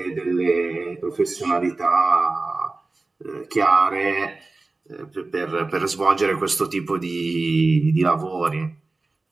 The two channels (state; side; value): quieter; left; 3.4 dB